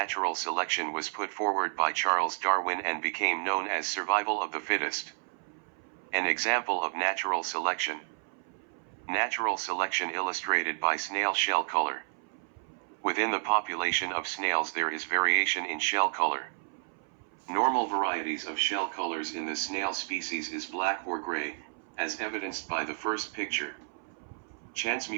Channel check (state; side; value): silent; left; 57 dB below the other